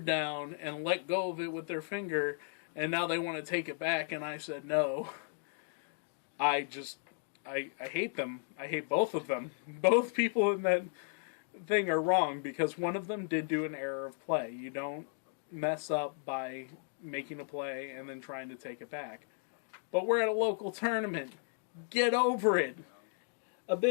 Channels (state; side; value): silent; right; digital silence